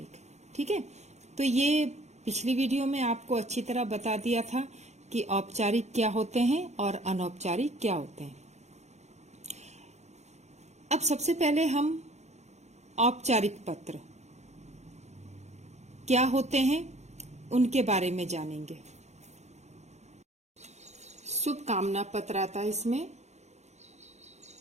ठीक है, तो ये पिछली वीडियो में आपको अच्छी तरह बता दिया था कि औपचारिक क्या होते हैं और अनौपचारिक क्या होते हैं। अब सबसे पहले हम औपचारिक पत्र क्या होते हैं उनके बारे में जानेंगे। शुभकामना पत्र आता है, इसमें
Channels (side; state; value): left; late; 0.33 ms